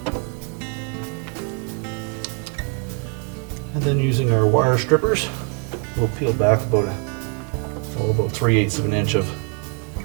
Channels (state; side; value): quieter; left; 33.4 dB